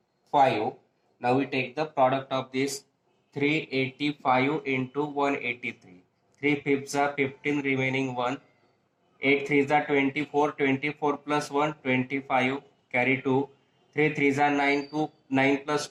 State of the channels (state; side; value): identical; both; correlation 1.00